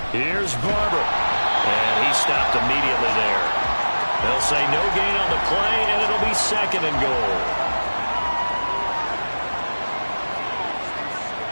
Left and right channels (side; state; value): both; inverted; correlation -1.00